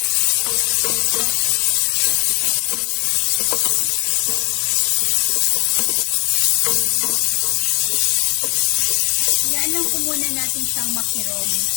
Yan lang po muna natin siyang makirog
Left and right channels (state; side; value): quieter; right; 31.5 dB